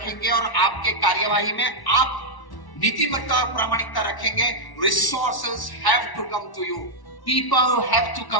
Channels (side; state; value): right; late; 1.1 ms